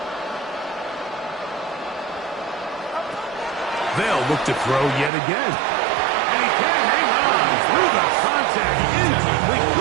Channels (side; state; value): left; drops out; at 5.1 s